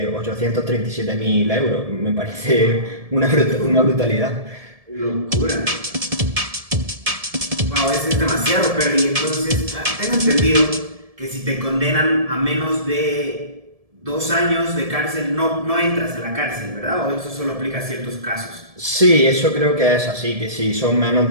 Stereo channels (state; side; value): late; left; 1.7 ms